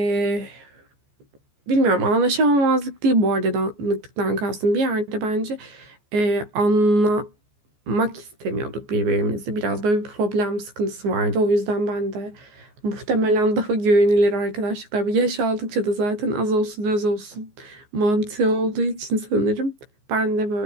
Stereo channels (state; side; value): late; left; 14 ms